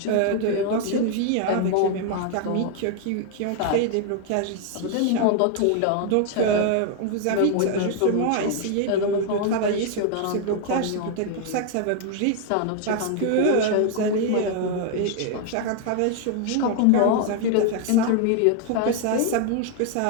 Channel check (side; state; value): both; different; correlation 0.00